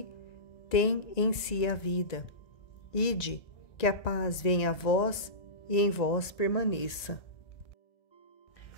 tem em si a vida. Ide, que a paz venha a vós e em vós permaneça.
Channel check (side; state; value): right; late; 1.9 ms